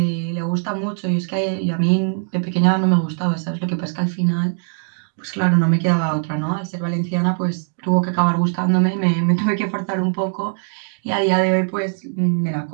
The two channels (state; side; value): silent; left; digital silence